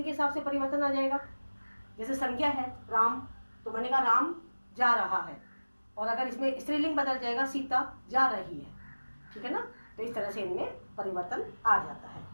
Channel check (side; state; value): both; inverted; correlation -1.00